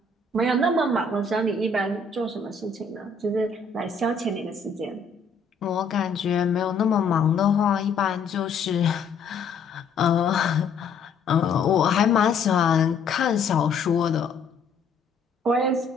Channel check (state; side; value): quieter; right; 4.5 dB